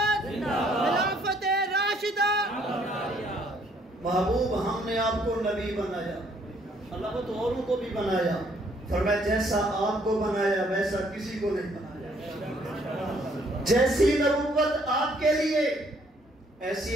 خلافت راشدہ۔ محبوب ہم نے آپ کو نبی بنایا، اللہ تو اوروں کو بھی بنایا، فرمایا جیسا آپ کو بنایا ویسا کسی کو نہیں بنایا۔ جیسی نبوت آپ کے لیے ایسی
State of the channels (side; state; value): both; normal; correlation 0.65